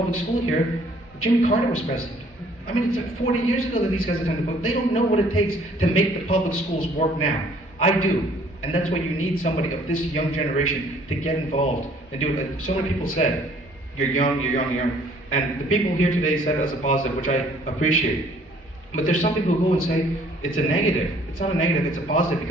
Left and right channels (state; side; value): normal; both; correlation 0.59